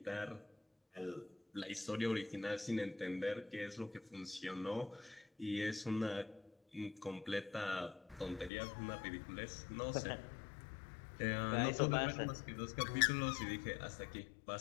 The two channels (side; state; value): right; drops out; at 8.5 s